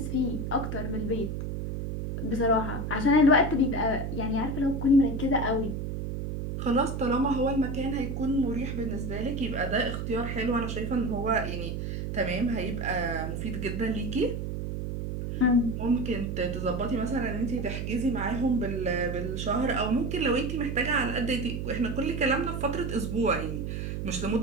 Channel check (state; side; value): noise; right; hum, 4 dB below the sound